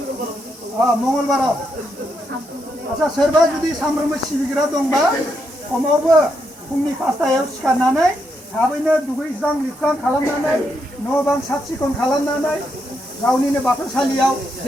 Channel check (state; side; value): normal; both; correlation 0.80